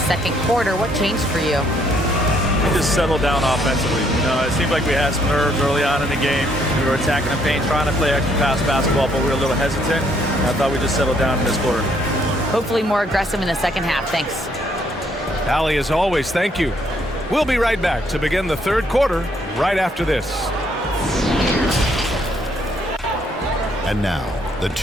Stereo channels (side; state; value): both; normal; correlation 0.69